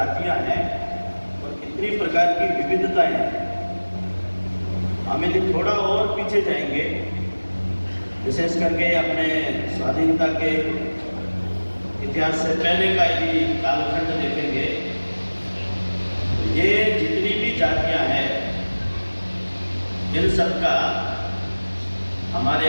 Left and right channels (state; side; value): inverted; both; correlation -1.00